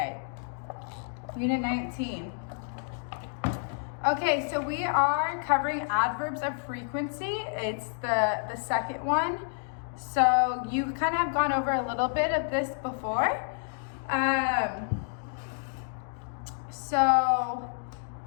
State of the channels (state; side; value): silent; right; digital silence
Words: Unit 19. Okay, so we are covering adverbs of frequency. It's the second one. So you kind of have gone over a little bit of this before. So